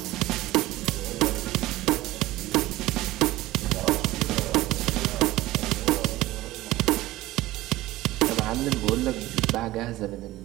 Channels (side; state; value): left; quieter; 17.5 dB